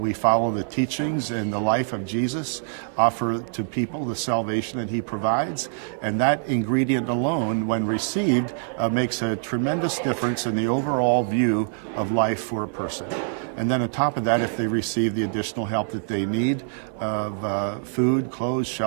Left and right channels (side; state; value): left; silent; 62 dB below the other